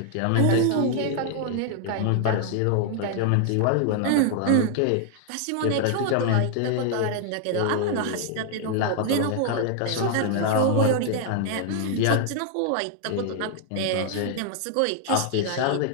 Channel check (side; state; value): both; different; correlation 0.00